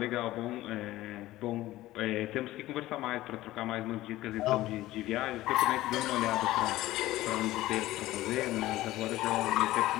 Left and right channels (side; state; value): right; quieter; 16.3 dB